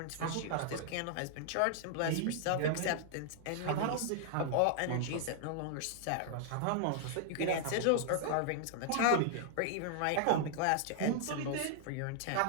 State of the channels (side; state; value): both; different; correlation -0.01